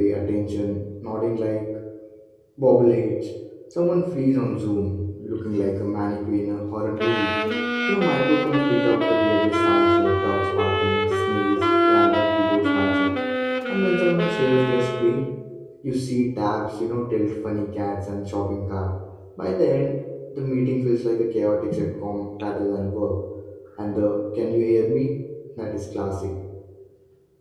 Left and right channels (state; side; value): identical; both; correlation 1.00